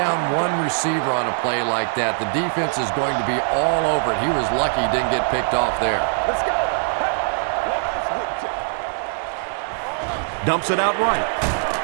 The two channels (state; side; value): silent; left; 64 dB below the other